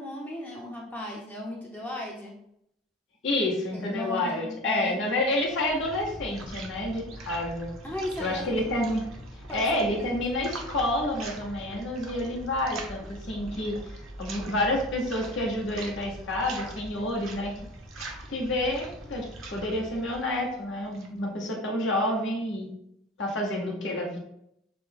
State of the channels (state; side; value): normal; both; correlation 0.35